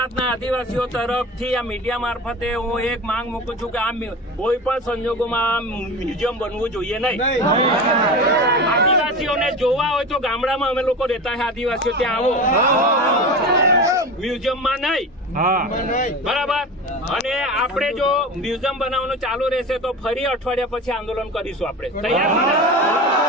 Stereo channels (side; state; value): both; normal; correlation 0.29